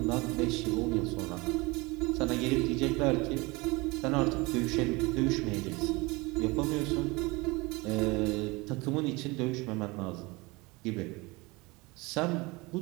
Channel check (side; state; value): left; quieter; 24.4 dB